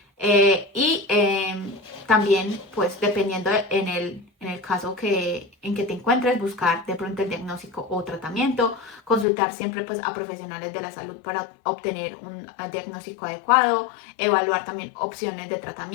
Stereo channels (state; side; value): drops out; right; at 9.2 s